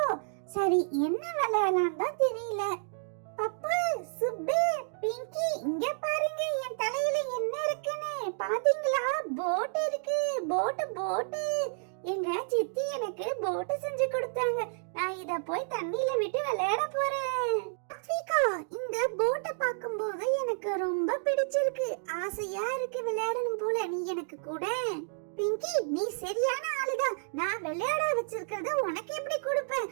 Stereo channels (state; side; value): silent; left; digital silence